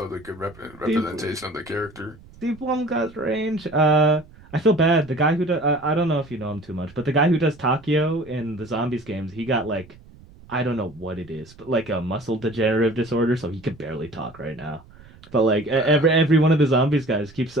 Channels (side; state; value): right; noise; rumble, 23 dB below the sound